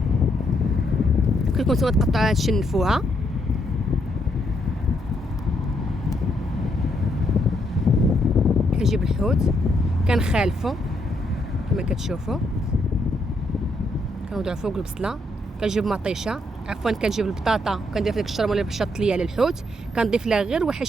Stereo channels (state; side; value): normal; both; correlation 0.75